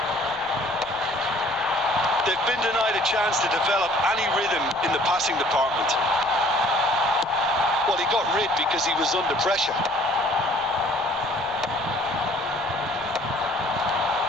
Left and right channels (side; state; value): left; noise; rumble, 23 dB below the sound